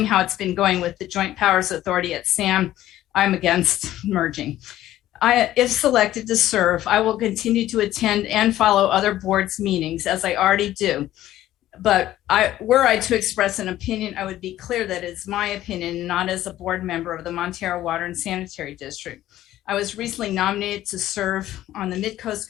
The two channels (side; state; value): right; quieter; 13.9 dB